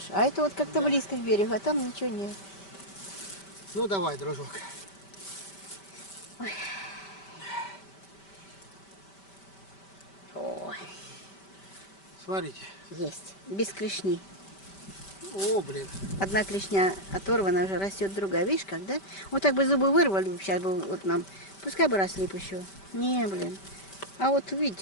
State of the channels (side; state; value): right; late; 5.1 ms